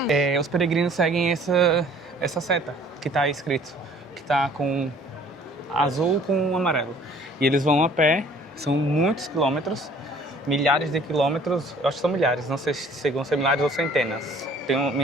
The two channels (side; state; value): both; normal; correlation 0.54